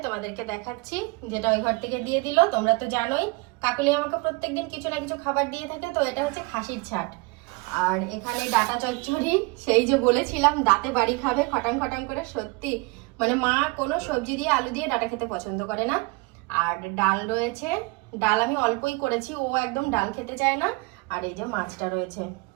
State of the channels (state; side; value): quieter; left; 26.6 dB